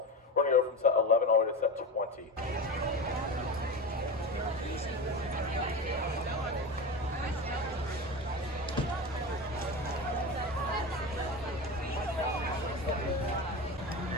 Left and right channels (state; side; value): normal; both; correlation 0.24